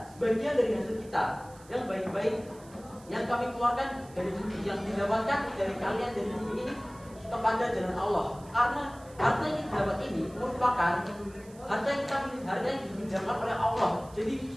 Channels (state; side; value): noise; right; hiss, 24 dB below the sound